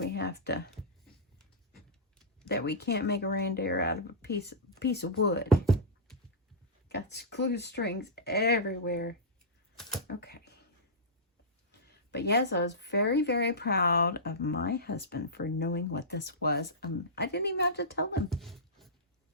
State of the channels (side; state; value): both; normal; correlation -0.14